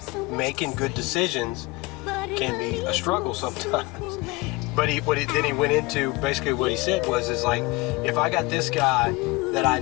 making good decisions can be a struggle sometimes. But then he went into basically what he said is like, if I got this guy that I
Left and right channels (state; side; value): quieter; right; 23.7 dB